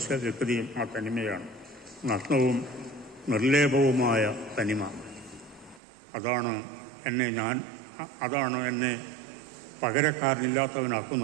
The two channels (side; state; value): left; drops out; at 5.8 s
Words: വ്യക്തിയും ആ തനിമയാണ്. നഗ്നവും നിർലേപവുമായ തനിമ. അതാണ് എന്നെ